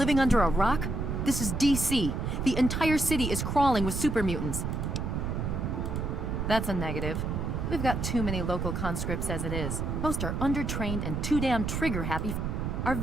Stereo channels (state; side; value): noise; right; rumble, 2 dB below the sound